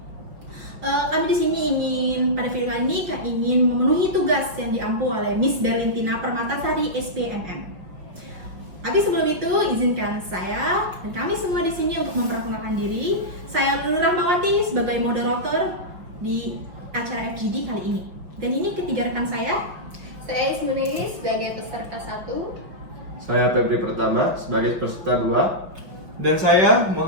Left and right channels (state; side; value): late; left; 5.7 ms